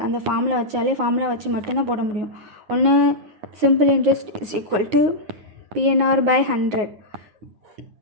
அந்த ஃபார்முலா வச்சு மட்டும்தான் போட முடியும். ஒன்று simple interest is equal to PNR by 100,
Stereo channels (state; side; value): late; left; 9.4 ms